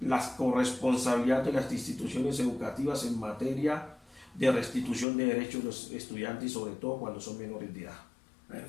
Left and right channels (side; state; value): right; drops out; at 5.1 s